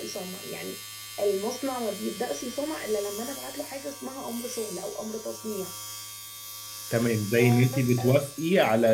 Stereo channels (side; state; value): both; identical; correlation 1.00